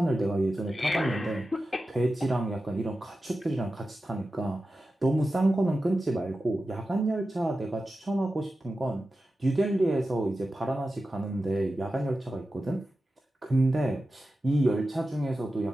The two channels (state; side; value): normal; both; correlation 0.93